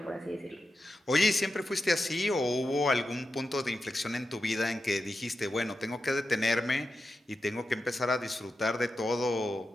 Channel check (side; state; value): both; normal; correlation 0.90